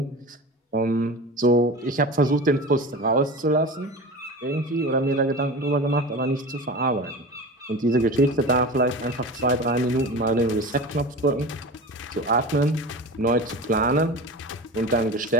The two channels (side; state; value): both; normal; correlation 0.31